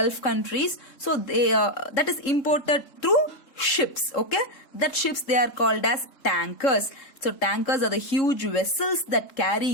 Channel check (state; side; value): late; right; 3.7 ms